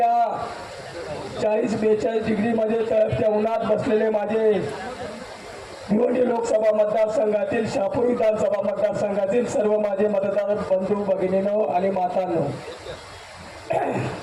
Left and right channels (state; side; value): identical; both; correlation 1.00